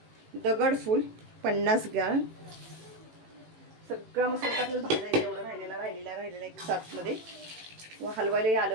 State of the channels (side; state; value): left; late; 18 ms